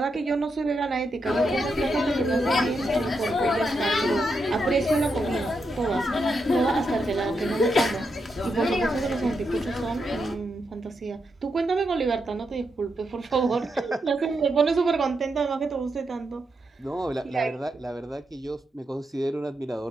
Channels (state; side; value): normal; both; correlation 0.83